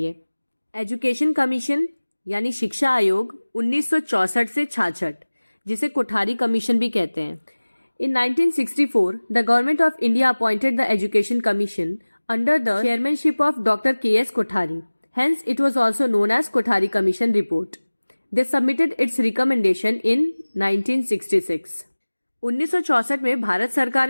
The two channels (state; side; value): inverted; both; correlation -1.00